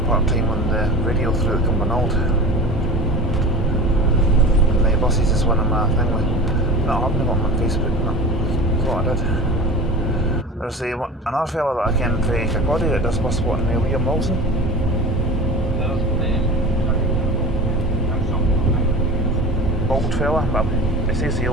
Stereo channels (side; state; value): both; normal; correlation 0.33